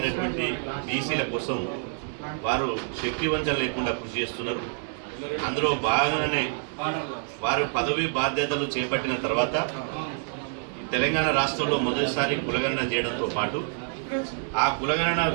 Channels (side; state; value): left; silent; 60 dB below the other